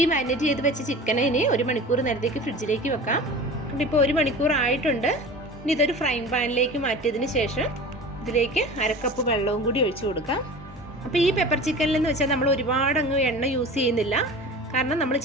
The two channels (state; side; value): normal; both; correlation 0.36